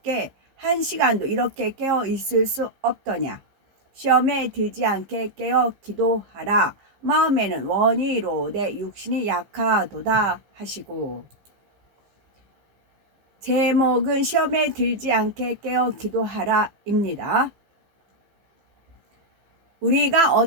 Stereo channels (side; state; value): left; late; 15 ms